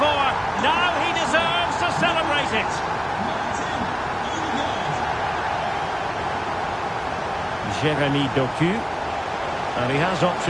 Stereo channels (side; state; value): both; identical; correlation 1.00